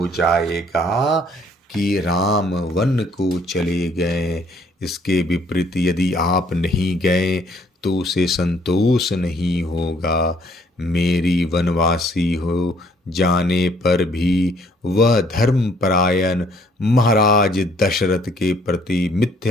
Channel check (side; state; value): both; normal; correlation 0.63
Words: जाएगा कि राम वन को चले गए। इसके विपरीत यदि आप नहीं गए तो उसे संतोष नहीं होगा। मेरी वनवासी हो जाने पर भी वह धर्मपरायण महाराज दशरथ के प्रति